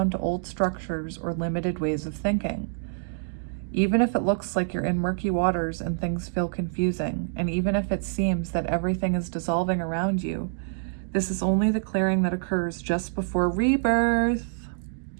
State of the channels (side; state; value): left; silent; digital silence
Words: to old structures or limited ways of thinking. Even if it looks like you're in murky waters and things feel confusing, and even if it seems that everything is dissolving around you, this is only the clearing that occurs just before rebirth.